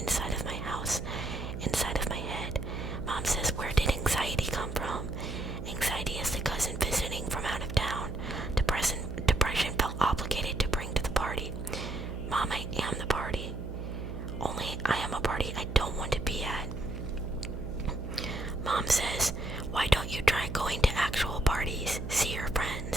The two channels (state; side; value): noise; right; hum, 6 dB below the sound